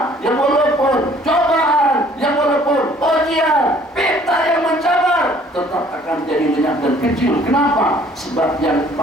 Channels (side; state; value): both; normal; correlation 0.57